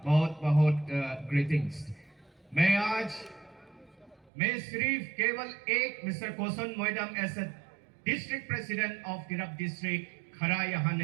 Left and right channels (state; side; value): drops out; left; at 4.3 s